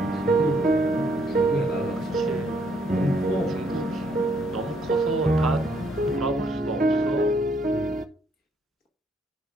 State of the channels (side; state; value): both; normal; correlation 0.70